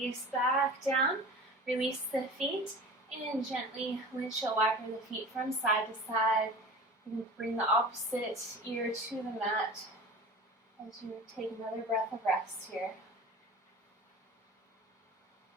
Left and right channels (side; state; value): both; normal; correlation 0.37